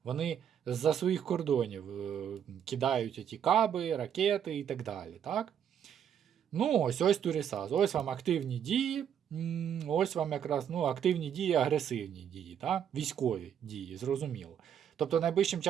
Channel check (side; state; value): left; quieter; 8.8 dB